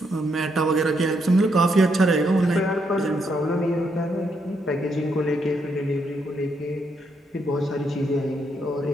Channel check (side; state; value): both; normal; correlation 0.77